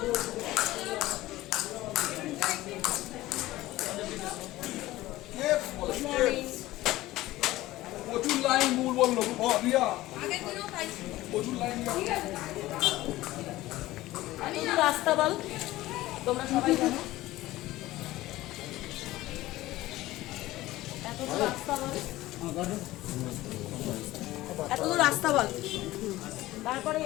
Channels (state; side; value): quieter; right; 17.0 dB